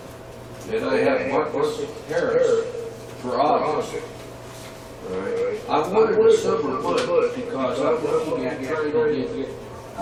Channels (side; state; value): both; identical; correlation 1.00